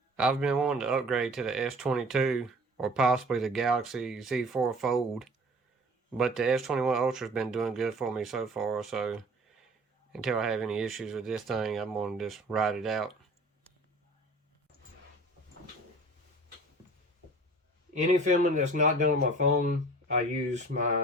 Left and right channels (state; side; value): normal; both; correlation 0.45